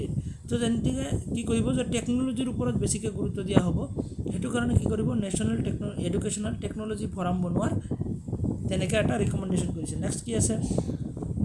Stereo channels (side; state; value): both; identical; correlation 1.00